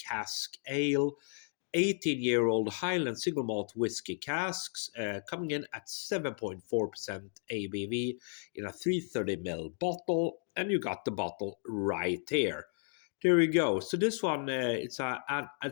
ale. 18-year-old Highland single malt whiskey casks, coming in at 7.4% ABV in a 330ml bottle, and you got the bottle right here. There we go. So this one, it's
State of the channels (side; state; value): right; silent; 55 dB below the other